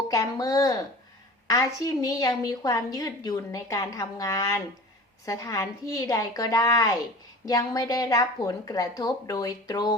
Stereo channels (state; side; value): normal; both; correlation 0.40